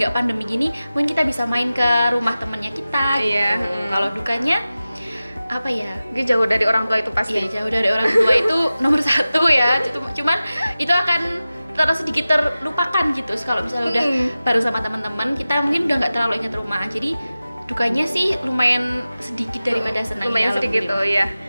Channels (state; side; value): inverted; both; correlation -0.95